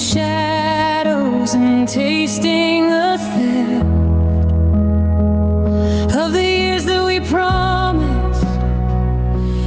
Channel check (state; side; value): identical; both; correlation 1.00